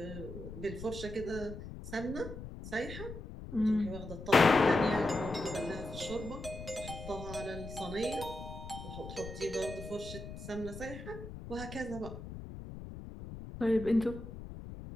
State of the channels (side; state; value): left; noise; rumble, 11 dB below the sound